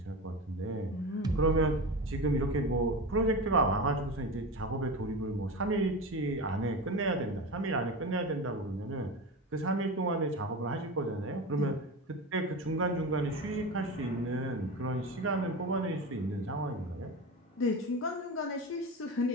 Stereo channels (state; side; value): normal; both; correlation 0.26